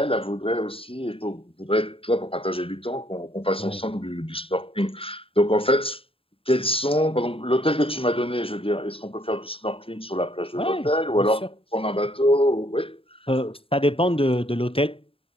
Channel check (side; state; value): right; late; 0.27 ms